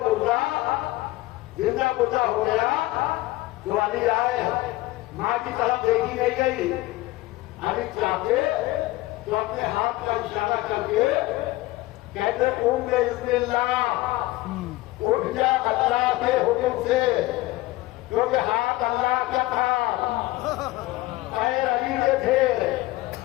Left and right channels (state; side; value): quieter; right; 18.6 dB